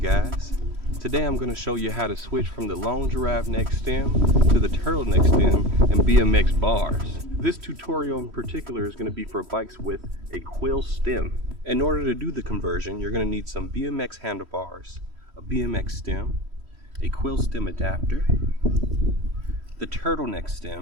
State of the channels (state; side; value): late; left; 3.1 ms